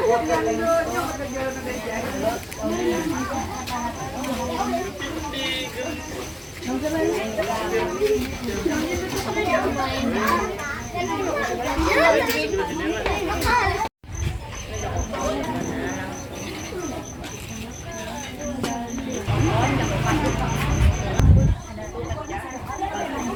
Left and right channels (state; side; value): identical; both; correlation 1.00